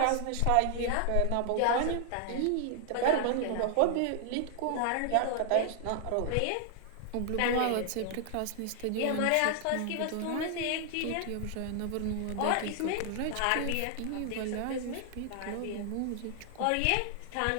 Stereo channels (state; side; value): different; both; correlation 0.00